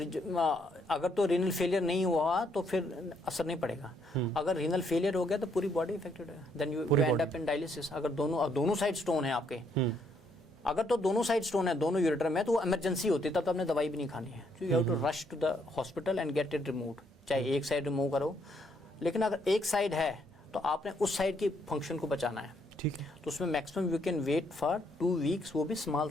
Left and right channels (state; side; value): normal; both; correlation 0.72